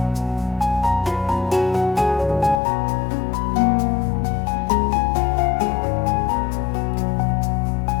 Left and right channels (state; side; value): drops out; right; at 2.6 s